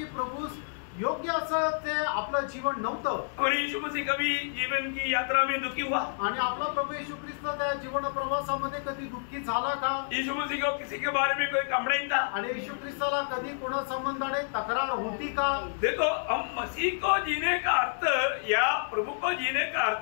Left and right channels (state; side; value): silent; right; 58 dB below the other